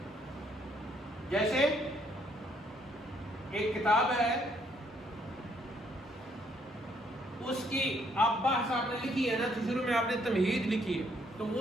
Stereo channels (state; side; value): normal; both; correlation 0.69